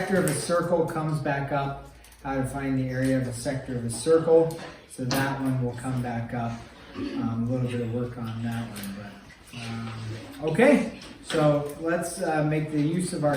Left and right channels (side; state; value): both; identical; correlation 1.00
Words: of a circle comes back up, how to find the area of a sector of a circle. So that one will come back up. A little bit of work on that one, but okay. So let's make the use of